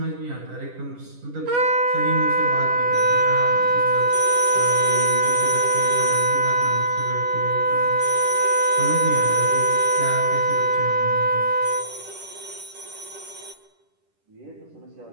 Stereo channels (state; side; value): late; left; 10 ms